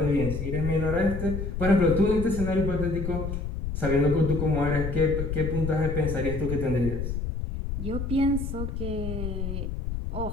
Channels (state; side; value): noise; left; rumble, 4 dB below the sound